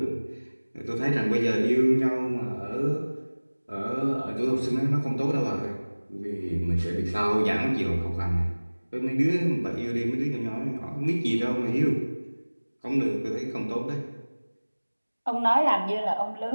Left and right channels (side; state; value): both; inverted; correlation -1.00